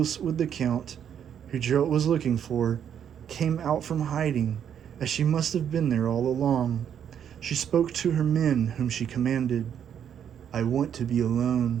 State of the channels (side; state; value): left; quieter; 8.9 dB